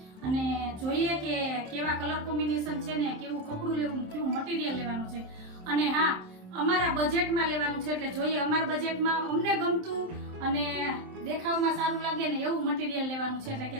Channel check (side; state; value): left; late; 27 ms